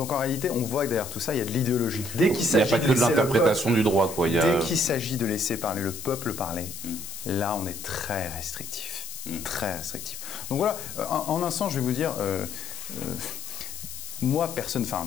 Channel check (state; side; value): noise; left; hiss, 10 dB below the sound